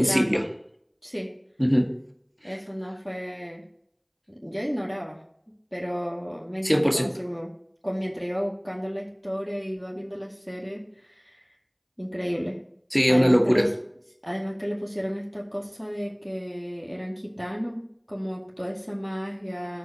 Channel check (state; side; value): identical; both; correlation 1.00